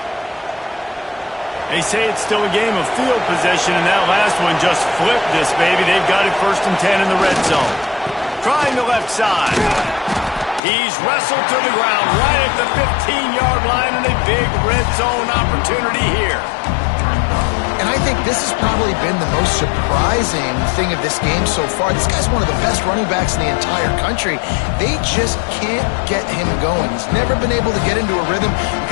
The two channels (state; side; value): drops out; right; at 10.6 s